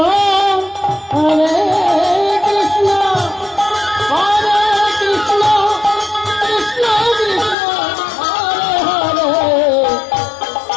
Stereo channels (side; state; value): right; drops out; at 7.6 s